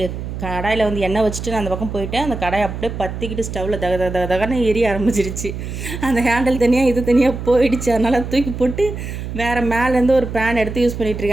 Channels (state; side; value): noise; right; hum, 7 dB below the sound